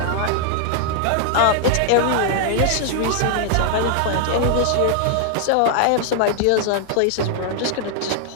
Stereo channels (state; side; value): different; both; correlation 0.00